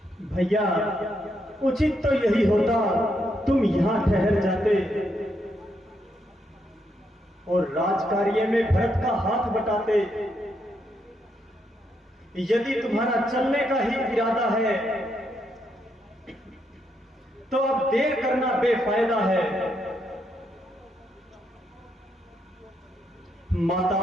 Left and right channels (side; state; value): both; normal; correlation 0.78